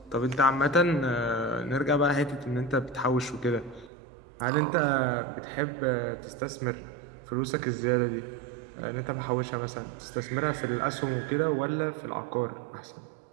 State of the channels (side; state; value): left; drops out; at 3.9 s